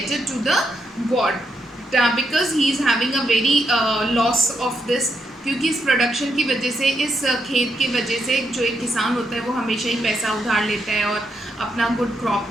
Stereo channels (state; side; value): normal; both; correlation 0.80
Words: to the God, because he is having a very loss of this. क्योंकि इस प्रोडक्शन की वजह से, इस खेत की वजह से, जो एक किसान होता है वो हमेशा ही पैसा उधार लेता है, और अपना गुड क्रॉप